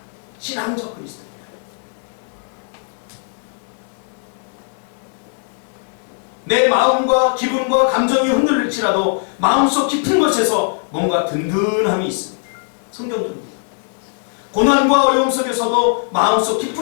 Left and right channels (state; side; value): silent; right; 66 dB below the other